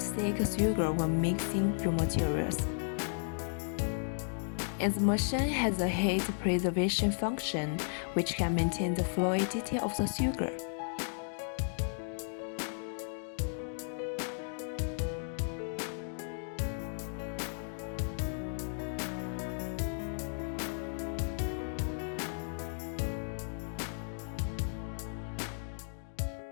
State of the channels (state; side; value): silent; right; digital silence